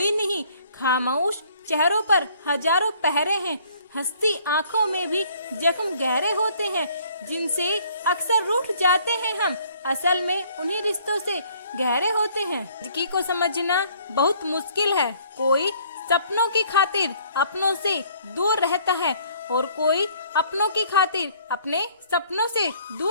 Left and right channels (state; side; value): inverted; both; correlation -0.59